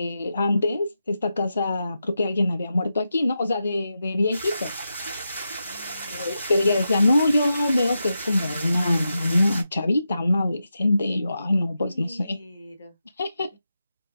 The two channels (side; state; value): both; inverted; correlation -0.88